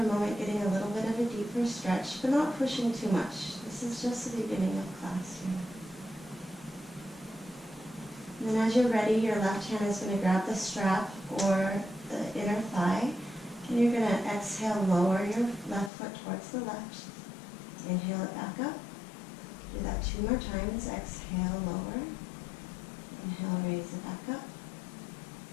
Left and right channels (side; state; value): right; drops out; at 15.9 s